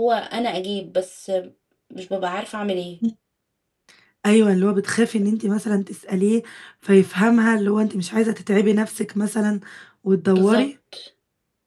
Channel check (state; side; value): identical; both; correlation 1.00